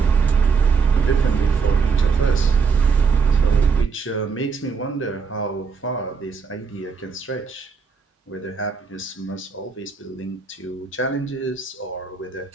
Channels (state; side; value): quieter; left; 5.4 dB